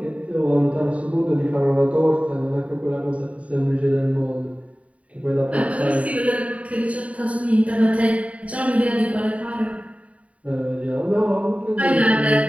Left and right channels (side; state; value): left; late; 0.066 ms